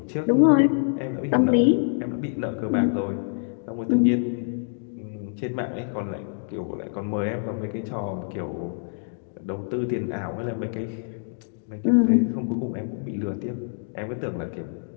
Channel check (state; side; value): silent; right; digital silence